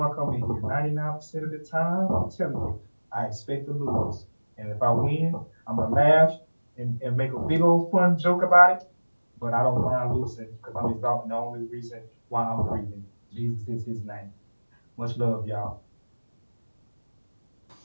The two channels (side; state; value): both; inverted; correlation -1.00